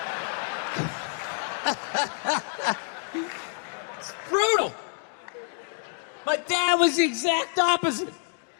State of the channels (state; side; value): silent; right; 59 dB below the other